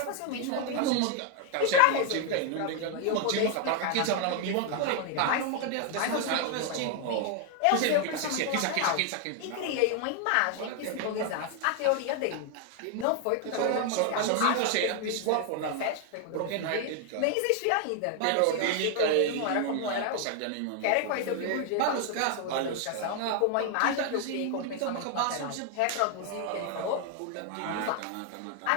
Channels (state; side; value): different; both; correlation 0.00